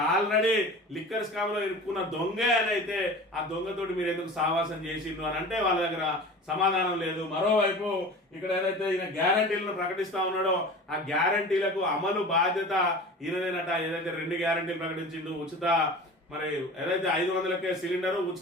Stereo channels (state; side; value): normal; both; correlation 0.37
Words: ఆల్రెడీ లిక్కర్ స్కామ్ లో ఇరుక్కున్న దొంగే అని అయితే ఆ దొంగతోటి మీరు ఎందుకు సావాసం చేసిండ్రు అని అంటే వాళ్ళ దగ్గర సమాధానం లేదు. మరోవైపు ఇక్కడ ఏదైతే ఈయన గ్యారంటీలను ప్రకటిస్తా ఉన్నాడో ఆ గ్యారంటీలకు అమలు బాధ్యత ఈయనదేనట. ఏదైతే 2 గ్యారంటీలు ప్రకటించిండు, ఉచిత మరి ఏదైతే 500కే సిలిండర్,